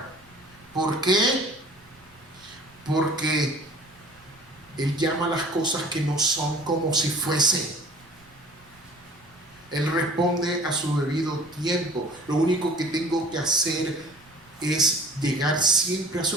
¿Por qué? Porque Él llama las cosas que no son como si fuesen. Él responde a su debido tiempo. Lo único que tengo que hacer es llegar siempre a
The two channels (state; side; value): noise; right; rumble, 27 dB below the sound